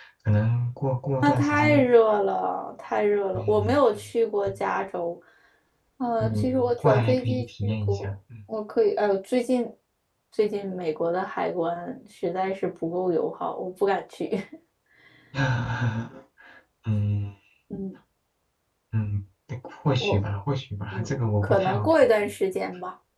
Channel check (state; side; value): identical; both; correlation 1.00